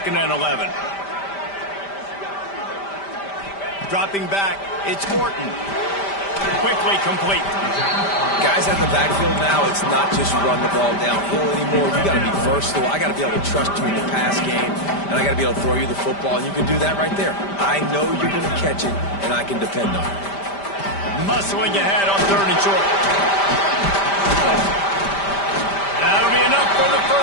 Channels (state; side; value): late; right; 5.1 ms